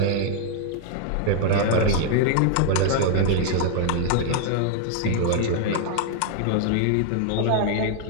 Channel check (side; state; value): both; different; correlation 0.00